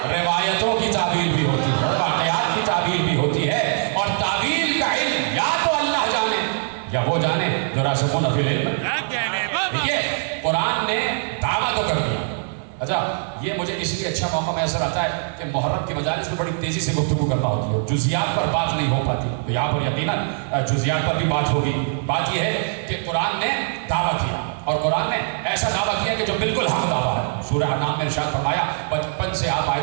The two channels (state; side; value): silent; left; 61 dB below the other